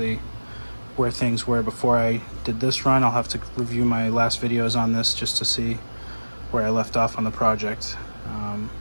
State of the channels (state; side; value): inverted; both; correlation -1.00